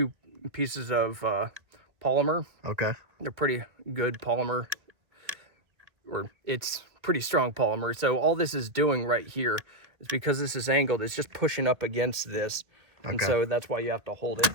pieces of polymer. They're pretty good polymer, or it's pretty strong polymer. So all this is doing right here is, because this is angled, it's just pushing up against this. And so that's why you have to hold it.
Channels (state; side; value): late; left; 1.5 ms